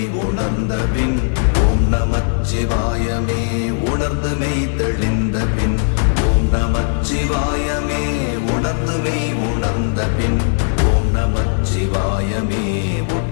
உணர்ந்த பின் ஓம் நமச்சிவாயமே உணர்ந்து மெய் தெளிந்த பின் ஓம் நமச்சிவாயமே உணர்ந்து மெய் உணர்ந்த பின் ஓம் நமச்சிவாயமே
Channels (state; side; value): silent; right; digital silence